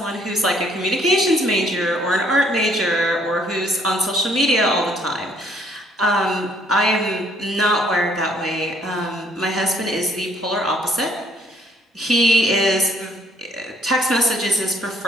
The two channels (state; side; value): normal; both; correlation 0.64